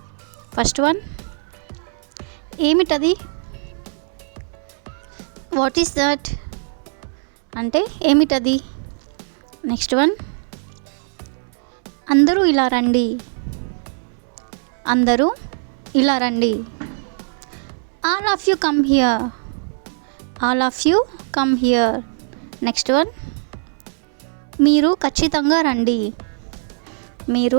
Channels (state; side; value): silent; left; 65 dB below the other